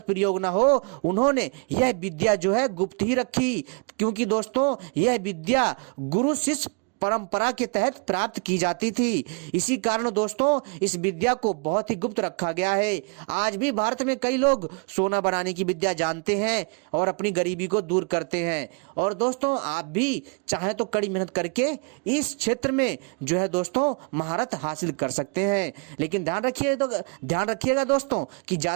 प्रयोग ना हो उन्होंने यह विद्या जो है गुप्त ही रखी, क्योंकि दोस्तों यह विद्या गुरु शिष्य परंपरा के तहत प्राप्त की जाती थी। इसी कारण दोस्तों इस विद्या को बहुत ही गुप्त रखा गया है। आज भी भारत में कई लोग सोना बनाने की विद्या जानते हैं और अपनी गरीबी को दूर करते हैं। और दोस्तों आप भी चाहें तो कड़ी मेहनत करके इस क्षेत्र में जो है दोस्तों महारत हासिल कर सकते हैं, लेकिन ध्यान रखिएगा दोस्तों कि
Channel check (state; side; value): quieter; left; 35.8 dB